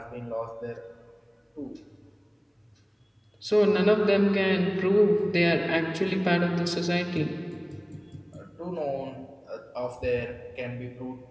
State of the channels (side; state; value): both; identical; correlation 1.00